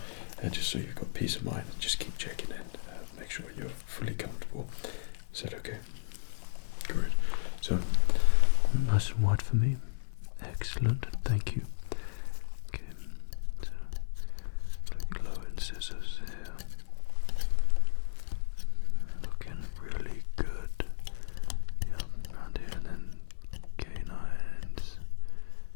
just so you've got peace of mind. Just keep checking in, make sure you're fully comfortable. Is that okay? Good. So, nice and wide for me. Excellent, thank you. Okay, so look low incisors here. Looking really good. Yeah, around here, and then canines.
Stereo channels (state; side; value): silent; right; 56 dB below the other